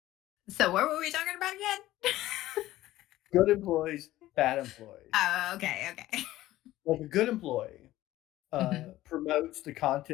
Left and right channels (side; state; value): right; quieter; 15.6 dB